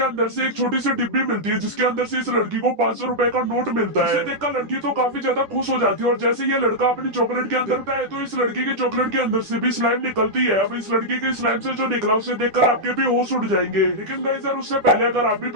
अंदर से एक छोटी सी डिब्बी मिलती है, जिसके अंदर से इस लड़की को 500 रुपए का नोट मिलता है। इसे देखकर लड़की तो काफी ज्यादा खुश हो जाती है और जैसे ये लड़का अपनी चॉकलेट के अंदर आता है तो इस लड़की के चॉकलेट के अंदर से भी स्लाइम निकलती है। अब इस लड़की के स्लाइम से जो निकला उसे देखकर आपके भी होश उड़ जाएंगे। लेकिन गाइस यार, उससे पहले अगर आप भी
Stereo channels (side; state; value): left; late; 10 ms